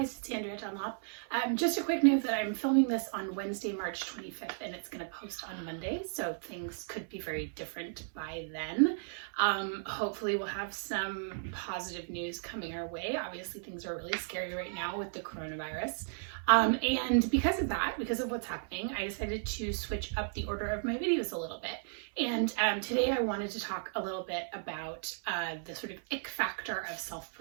it's Andrea Dunlop. Just a quick note that I'm filming this on Wednesday, March 25th, and it's going to post on Monday, so things could be very different by then. Hopefully we'll have some positive news coming our way. Obviously things are really scary right now with the coronavirus. And because of that, because of what's happening, I decided to switch up the order of my videos a little bit. And today I wanted to talk a little bit about the sort of ick factor of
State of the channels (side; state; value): left; silent; 55 dB below the other